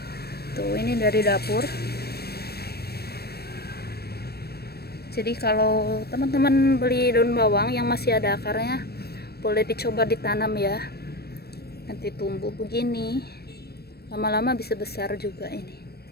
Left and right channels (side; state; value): right; late; 0.47 ms